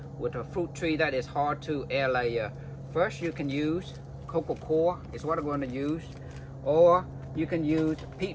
fruit tree that is hard to air layer. First, you can use cocoa coir is what I'm going to use, or you can use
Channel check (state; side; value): identical; both; correlation 1.00